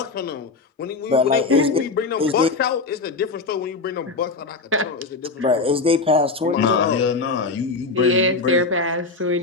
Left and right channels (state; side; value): quieter; right; 3.9 dB